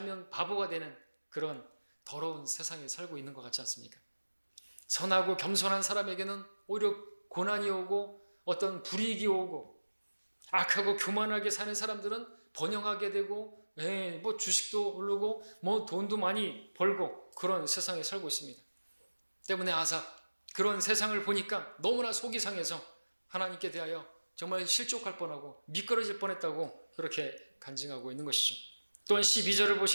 바보가 되는 그런 더러운 세상에 살고 있는 것 같지 않습니까? 선하고 겸손한 사람에게는 오히려 고난이 오고 어떤 불이익이 오고 악하고 교만하게 사는 사람들은 번영하게 되고 뭐 주식도 오르고 뭐 돈도 많이 벌고 그런 세상에 살고 있습니다. 때문에 아삽 그런 세상을 보니까 너무나 속이 상해서 하나님께 대하여 정말 실족할 뻔하고 미끄러질 뻔했다고 그렇게 간증하고 있는 것이죠. 또한 12절을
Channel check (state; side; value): inverted; both; correlation -1.00